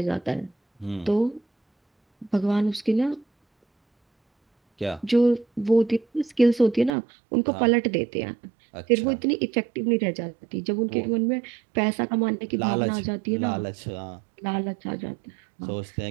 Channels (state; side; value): drops out; left; at 6.9 s